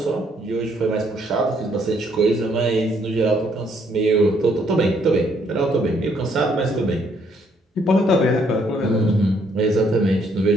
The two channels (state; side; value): normal; both; correlation 0.69